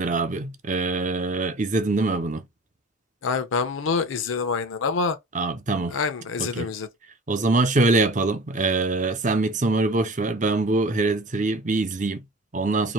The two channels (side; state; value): both; normal; correlation 0.39